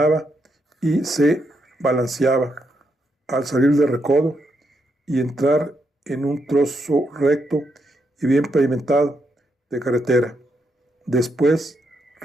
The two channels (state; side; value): normal; both; correlation 0.80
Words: y se balanceaba al salir del recodo y entrar en un trozo recto y bien pavimentado de carretera. Después